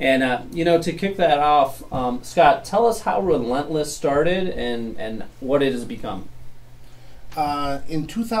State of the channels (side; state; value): both; identical; correlation 1.00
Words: to kick that off, Scott, tell us how Relentless started and what it has become. In